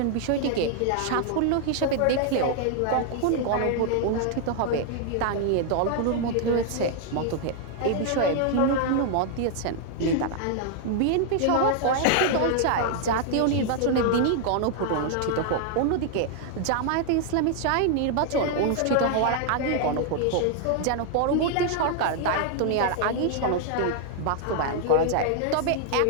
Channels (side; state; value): both; different; correlation 0.00